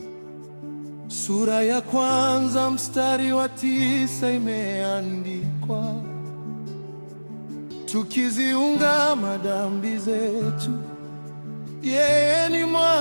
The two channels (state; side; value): inverted; both; correlation -1.00